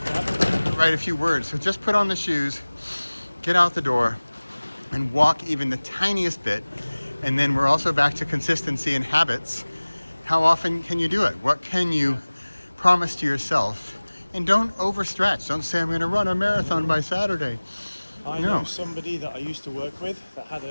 write a few words. So just put on the shoes, get out the door, and walk even the tiniest bit. And then we're also back to consistency and habits. How often can you do it? What can you promise to yourself? And don't overstretch. Don't say, I'm going to run a marathon by Saturday. I know somebody that I used to work with that had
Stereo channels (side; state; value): both; inverted; correlation -1.00